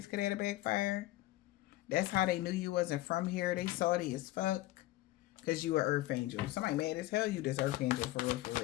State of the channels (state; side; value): quieter; right; 16.9 dB